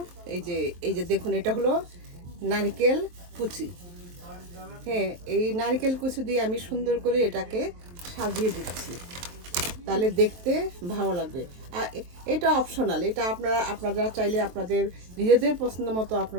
এই যে দেখুন, এটা হলো নারকেল কুচি। হ্যাঁ, এই নারকেল কুচি দিয়ে আমি সুন্দর করে এটাকে সাজিয়ে দিচ্ছি, তাহলে দেখতে ভালো লাগবে। আর এটা অপশনাল, এটা আপনারা চাইলে আপনাদের নিজেদের পছন্দ মতো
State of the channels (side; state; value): left; late; 23 ms